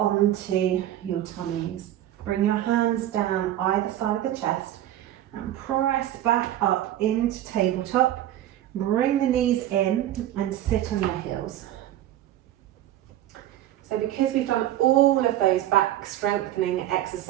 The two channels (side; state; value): left; quieter; 12.9 dB